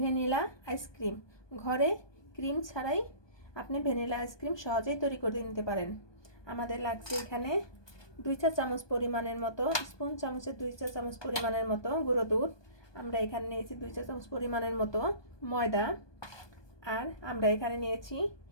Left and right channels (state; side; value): late; right; 1.2 ms